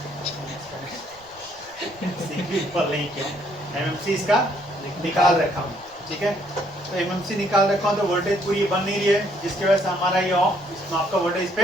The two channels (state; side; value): noise; right; rumble, 29 dB below the sound